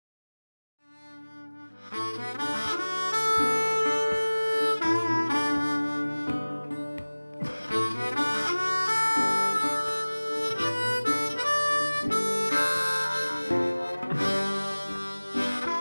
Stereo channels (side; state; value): both; inverted; correlation -1.00